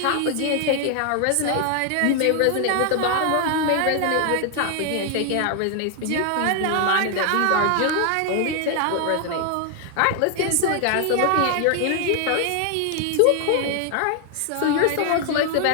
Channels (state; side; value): different; both; correlation 0.00